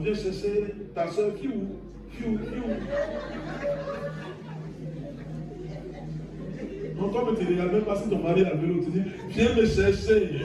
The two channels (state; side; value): identical; both; correlation 1.00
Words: chercher ta soeur, qui où? Non, toi, tu ne regardes même pas si ton mari a le vélo, tu dis, viens me